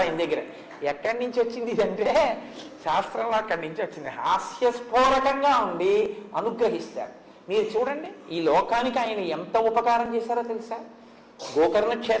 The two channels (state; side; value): identical; both; correlation 1.00